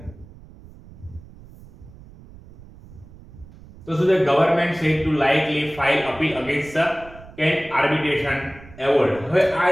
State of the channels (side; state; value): right; noise; rumble, 20 dB below the sound